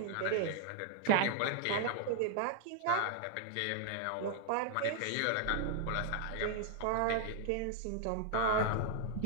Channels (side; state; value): both; different; correlation 0.00